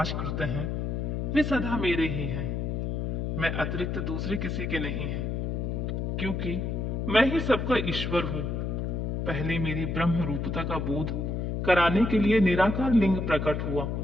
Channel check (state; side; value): noise; left; hum, 1 dB below the sound